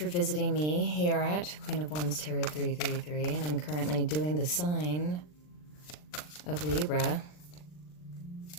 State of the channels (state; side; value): late; right; 40 ms